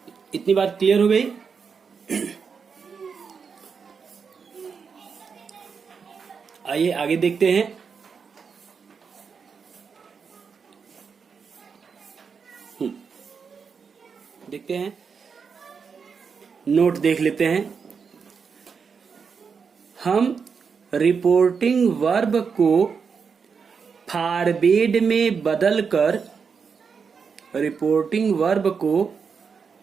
इतनी बात क्लियर हो गई। आइए आगे देखते हैं। देखते हैं, नोट देख लेते हैं। हम रिपोर्टिंग वर्ब को फॉरवर्ड में बदलकर, रिपोर्टिंग वर्ब को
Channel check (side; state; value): left; quieter; 5.9 dB